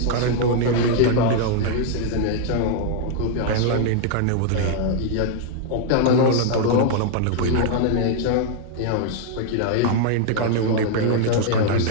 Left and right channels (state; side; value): different; both; correlation 0.00